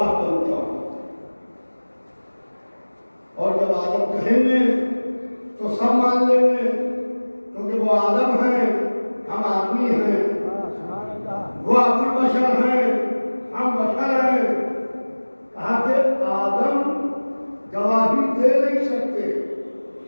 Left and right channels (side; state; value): both; inverted; correlation -1.00